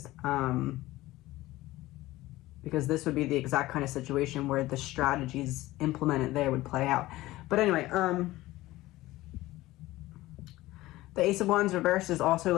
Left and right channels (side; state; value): right; quieter; 17.6 dB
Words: Because this would be the exact kind of situation where the strategies implemented there would play out. But anyway, the Ace of Wands reversed is also